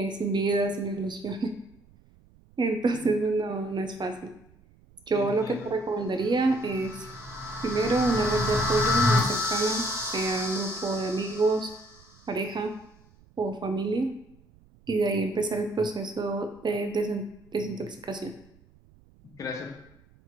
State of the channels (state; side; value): noise; right; rumble, 28 dB below the sound